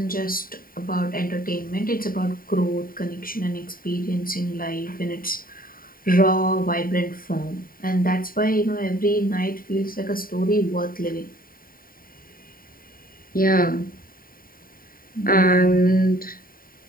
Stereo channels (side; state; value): right; late; 0.41 ms